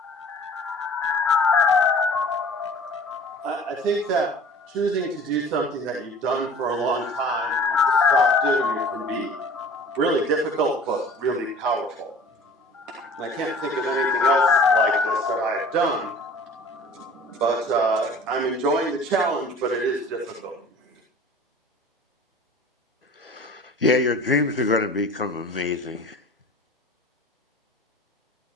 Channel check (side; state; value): both; normal; correlation 0.45